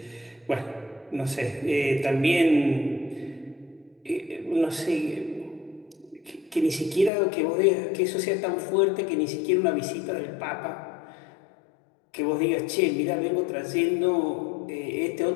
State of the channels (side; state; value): right; drops out; at 7.1 s